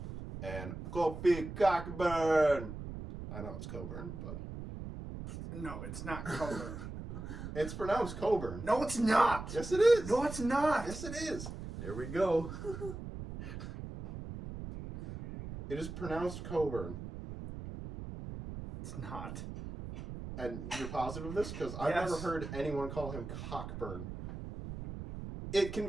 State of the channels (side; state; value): right; noise; rumble, 9 dB below the sound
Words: and Kofi Cockburn. I know it's Coburn, but... No, it's not Coburn. It's pronounced Coburn. No, it's not. Yes, it is. No, it's not. Yes, it is. There we go. It is pronounced Coburn. It's not. And you're positive of this? Because I've Yes. never heard anyone call him Cockburn. It can